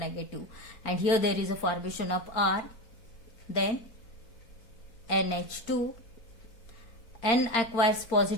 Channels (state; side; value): late; right; 4.4 ms